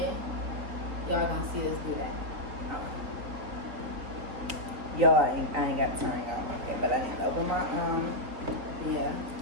y'all gonna see us do that. Okay. Yo, I ain't got to turn it on, okay, but I need to open my Yeah.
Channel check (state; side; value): late; left; 3.7 ms